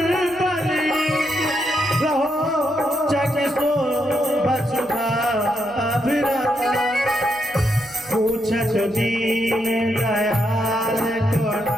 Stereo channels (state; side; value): noise; right; hum, 26 dB below the sound